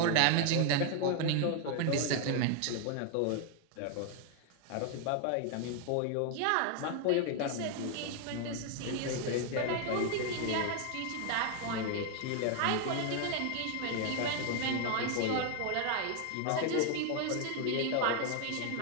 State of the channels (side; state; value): both; different; correlation 0.00